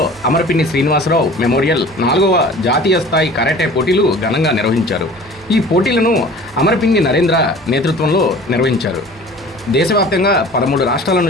అమర్పిన్ని శ్రీనివాసరావు మెమోరియల్ 4వ జాతీయ స్థాయి కరాటే పోటీలు ఘనంగా నిర్వహించారు. ఈ పోటీలను అమర్పిన్ని నరేంద్ర నేతృత్వంలో నిర్వహించారు. దేశవ్యాప్తంగా 13 రాష్ట్రాల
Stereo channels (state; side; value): normal; both; correlation 0.44